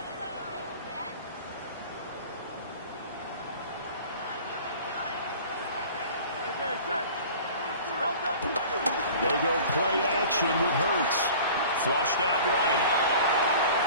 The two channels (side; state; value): both; inverted; correlation -0.44